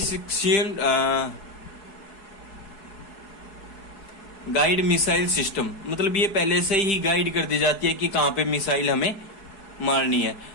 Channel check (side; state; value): right; late; 4.7 ms